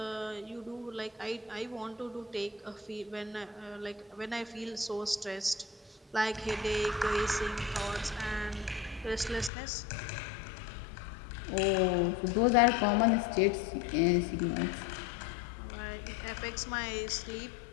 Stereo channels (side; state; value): right; drops out; at 9.5 s